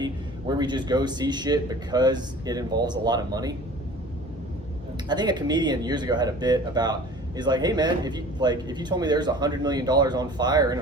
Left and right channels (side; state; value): both; normal; correlation 0.44